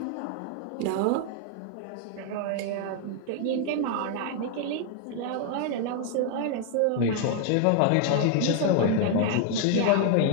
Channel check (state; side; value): different; both; correlation 0.00